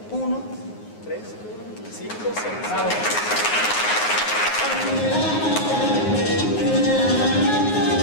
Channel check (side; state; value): right; late; 9.6 ms